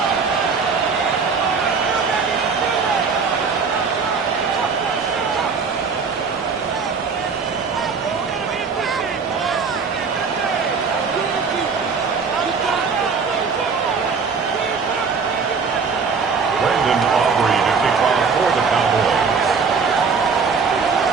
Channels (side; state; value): left; quieter; 5.3 dB